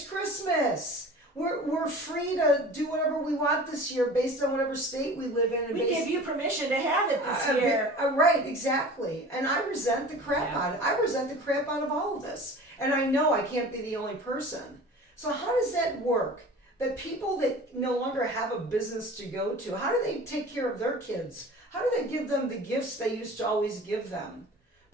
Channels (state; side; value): normal; both; correlation 0.40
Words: Christmas. We're free to do whatever we want this year based on whatever state we live in. And We give you permission to have it this year. Right, exactly. And I resent the crap out of it. I resent the crap out of all of this. And I know I can't be the only person. So how does that work? That people that no longer have a business to go to, how do they take care of their kids? How do they give them the gifts they used to always give them?